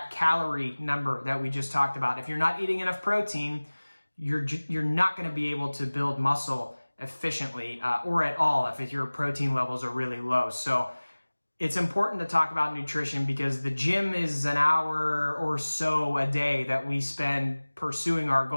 calorie number that we just talked about. If you're not eating enough protein, you're not going to be able to build muscle efficiently or at all if your protein levels are really low. So it's important to talk about nutrition because the gym is an hour or so a day that we spend pursuing our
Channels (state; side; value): inverted; both; correlation -1.00